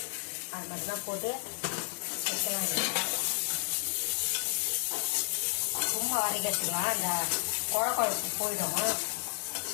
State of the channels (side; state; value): right; silent; digital silence